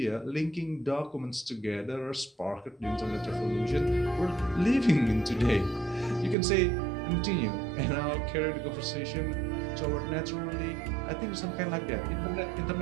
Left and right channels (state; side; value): drops out; left; at 6.4 s